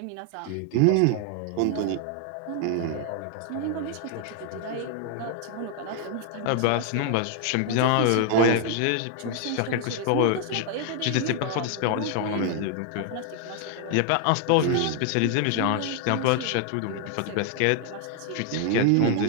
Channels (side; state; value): both; different; correlation 0.00